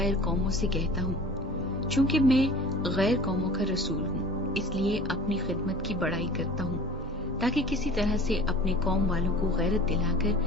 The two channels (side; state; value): both; normal; correlation 0.43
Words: قوموں سے کہتا ہوں، چونکہ میں غیر قوموں کا رسول ہوں، اس لیے اپنی خدمت کی بڑائی کرتا ہوں، تاکہ کسی طرح سے اپنے قوم والوں کو غیرت دلا کر